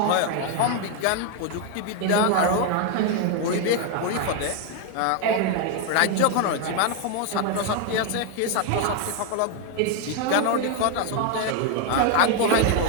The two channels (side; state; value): both; different; correlation 0.01